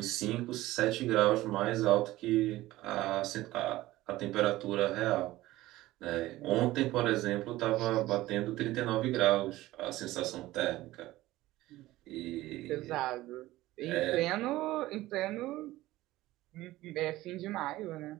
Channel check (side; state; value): left; quieter; 17.0 dB